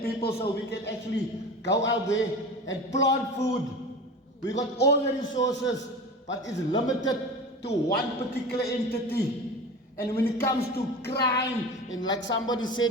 people so we can actually go out there and plant food. We got all the resources, but it's limited to one particular entity. And when it comes to crime, and like somebody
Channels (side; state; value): both; normal; correlation 0.32